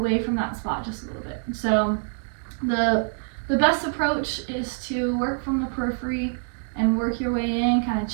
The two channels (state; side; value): silent; left; digital silence